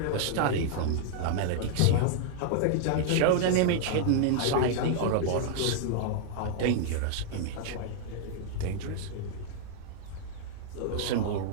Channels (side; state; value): both; different; correlation -0.01